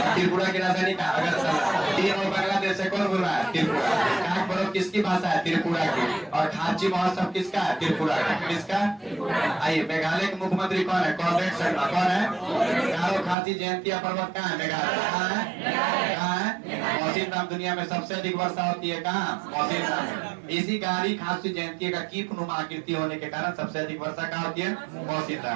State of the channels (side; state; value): left; drops out; at 13.4 s